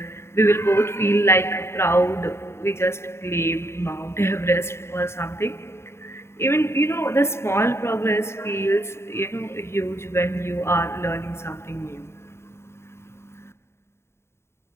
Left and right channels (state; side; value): late; right; 0.12 ms